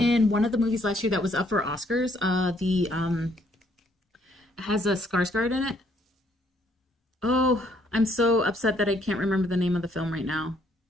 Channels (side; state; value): both; normal; correlation 0.67